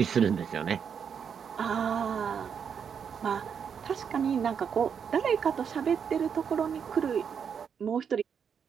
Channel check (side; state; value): left; quieter; 7.2 dB